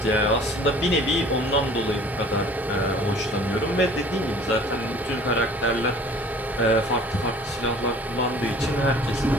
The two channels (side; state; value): both; normal; correlation 0.49